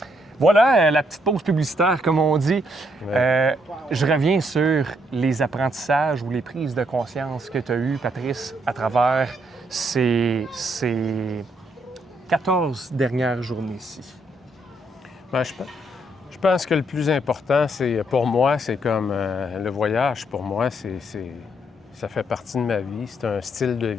Voilà la petite pause publicitaire, comme on dit. Ouais. Je reviens sur les apprentissages ou les prises de conscience que tu as eues, Patrice, à travers ces 14 dernières journées ici. Ben, je pense que le plus important, c'est pour moi, c'est comme le voyage. Pour moi, ça fait partie de ma vie. C'est un style de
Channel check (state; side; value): normal; both; correlation 0.73